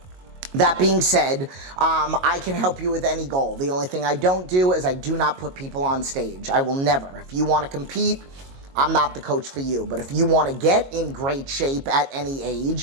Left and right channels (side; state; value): left; late; 22 ms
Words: that being said, I can help you with any goal. The only thing I don't do is I do not put people on stage. I will never. If you want to compete, I'm not the coach for you. But if you want to get in great shape at any